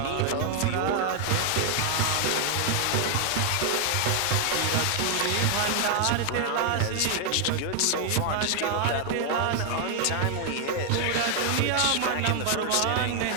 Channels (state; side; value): different; both; correlation 0.00